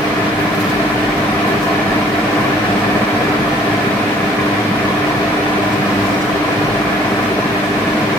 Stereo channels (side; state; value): both; normal; correlation 0.59